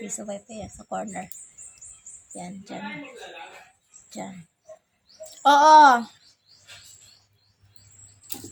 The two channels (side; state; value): both; identical; correlation 1.00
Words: wifi yan, sa corner. Yan, dyan. Dyan. Oo!